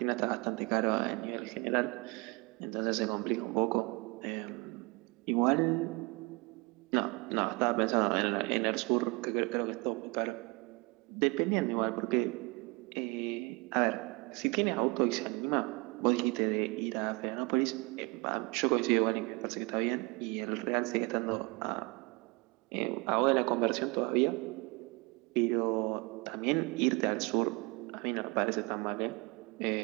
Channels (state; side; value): quieter; left; 27.1 dB